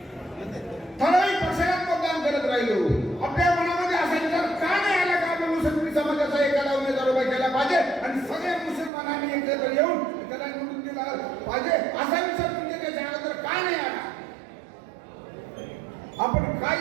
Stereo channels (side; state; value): left; drops out; at 8.9 s